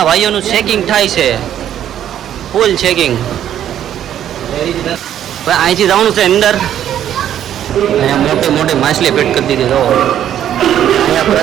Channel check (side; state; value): left; quieter; 10.6 dB